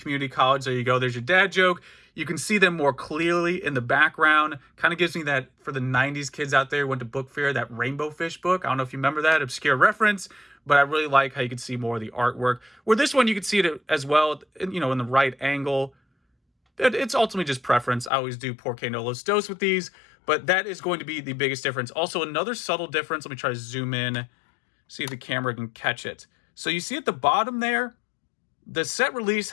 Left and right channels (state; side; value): drops out; right; at 18.1 s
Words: college. There you go. There's your dad joke. You can see them more clearly in the background. Kind of gives me that, for the 90s kids out there who went to book fair, that Rainbow Fish book. I don't know if you remember that, obscure reference, but I really like how you can see more of the artwork. Where this one, you can see it as well, you know, in the right angle. It's ultimately just preference. I always do Porque no los dos with these, but that is going to be the biggest difference. Also, another subtle difference. Let me try to zoom in, see if the camera can catch it. So you see at the bottom there, the set release